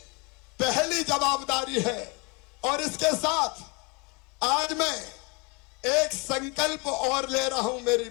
पहली जवाबदारी है। और इसके साथ आज मैं एक संकल्प और ले रहा हूं मेरी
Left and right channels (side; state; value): right; quieter; 29.7 dB